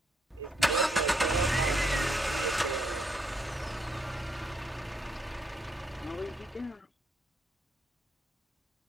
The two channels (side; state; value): both; normal; correlation 0.75